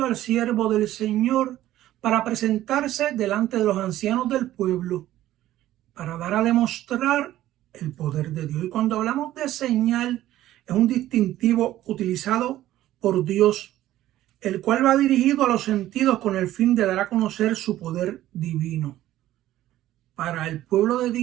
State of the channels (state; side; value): quieter; left; 14.1 dB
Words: al siervo del Señor para presentarse delante de los ancianos del pueblo, para dar a demostrar el poder de Dios. Y cuando hablamos de señal, es un distintivo utilizado por Dios, el cual va dirigido a los sentidos con el fin de dar a conocer su poder divino. Para el pueblo de